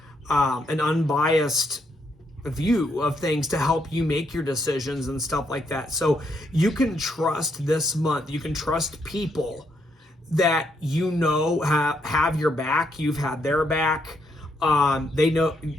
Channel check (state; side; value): normal; both; correlation 0.76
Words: unbiased view of things to help you make your decisions and stuff like that. So you can trust this month. You can trust people that you know have your back. You've had their back. They know